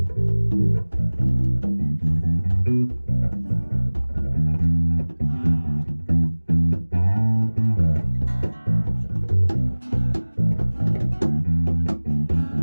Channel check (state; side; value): inverted; both; correlation -1.00